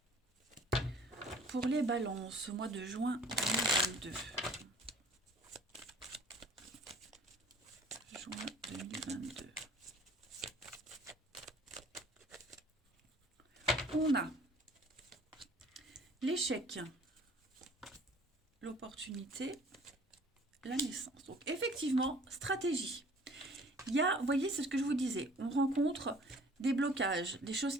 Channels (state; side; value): normal; both; correlation 0.51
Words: Pour les balances, au mois de juin 2022. Juin 2022. On a l'échec, l'opportunité, la naissance. Donc effectivement, stratégie. Il y a, vous voyez, c'est ce que je vous disais, on rencontre des blocages, des choses